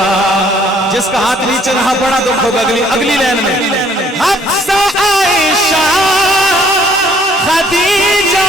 جس کا ہاتھ نیچے رہا بڑا دکھ ہوگا اگلی لائن میں. حفصہ عائشہ خدیجہ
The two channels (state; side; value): normal; both; correlation 0.61